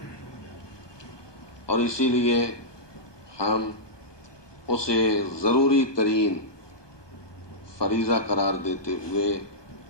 اور اسی لیے ہم اسے ضروری ترین فریضہ قرار دیتے ہوئے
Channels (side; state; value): right; late; 1.2 ms